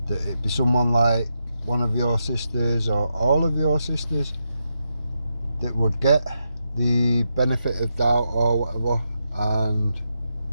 that it'd be someone like one of your sisters or all of your sisters that would get the benefit of doubt or whatever and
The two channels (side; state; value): both; inverted; correlation -0.84